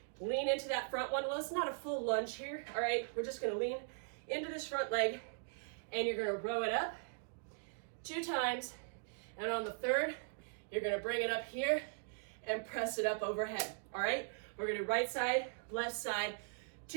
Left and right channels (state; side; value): silent; left; digital silence